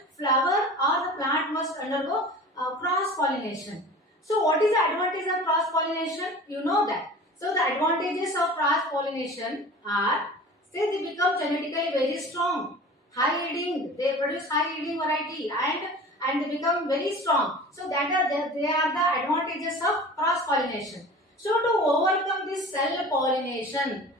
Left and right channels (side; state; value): both; normal; correlation 0.39